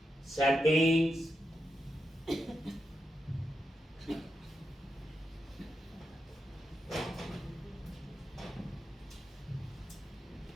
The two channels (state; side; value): normal; both; correlation 0.86